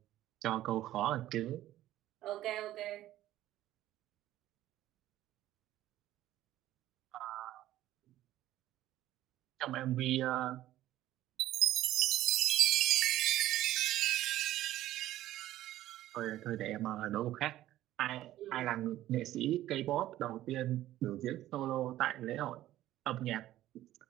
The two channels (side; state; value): left; quieter; 14.2 dB